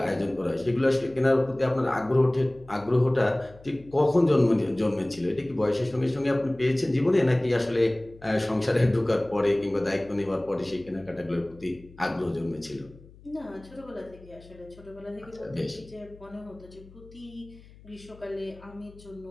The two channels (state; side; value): noise; left; hum, 22 dB below the sound